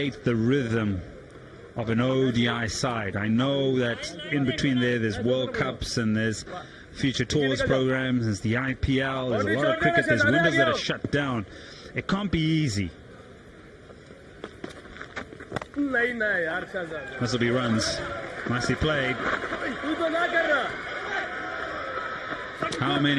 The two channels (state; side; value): identical; both; correlation 1.00